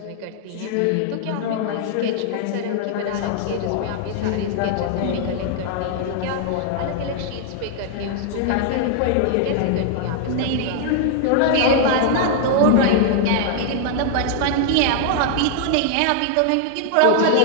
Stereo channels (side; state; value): both; different; correlation -0.01